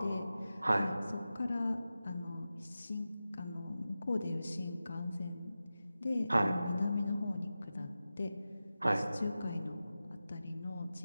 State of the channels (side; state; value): both; inverted; correlation -0.94